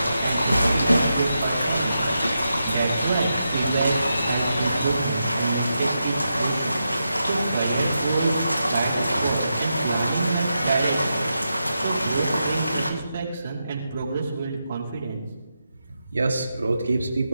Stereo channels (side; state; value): both; inverted; correlation -0.87